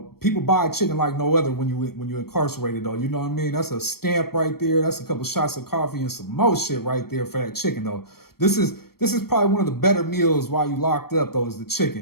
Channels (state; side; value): late; right; 0.94 ms